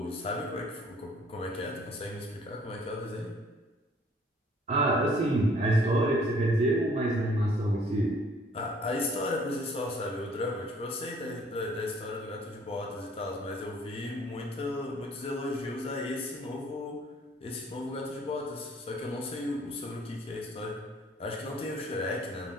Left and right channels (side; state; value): both; normal; correlation 0.58